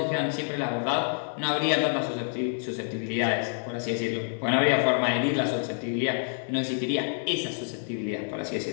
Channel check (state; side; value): silent; right; digital silence